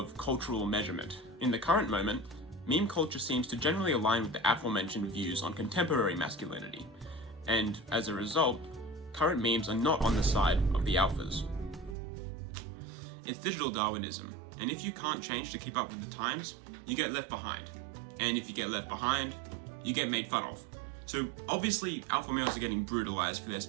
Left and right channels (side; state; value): left; drops out; at 12.0 s